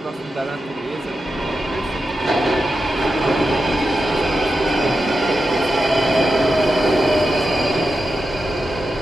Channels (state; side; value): normal; both; correlation 0.89